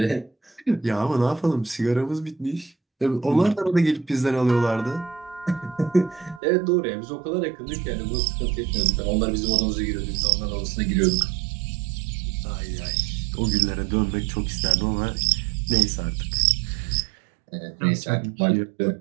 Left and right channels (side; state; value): left; drops out; at 6.4 s